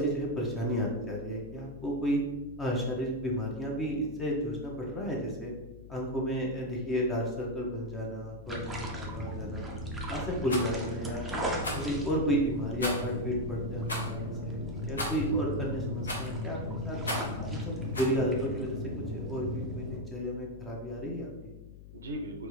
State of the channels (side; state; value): left; noise; hum, 16 dB below the sound